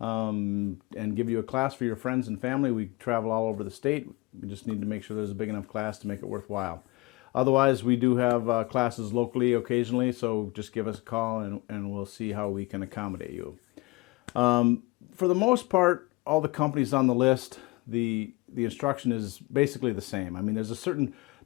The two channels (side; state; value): right; quieter; 23.4 dB